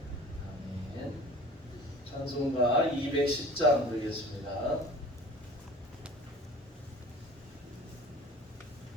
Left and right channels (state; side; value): normal; both; correlation 0.43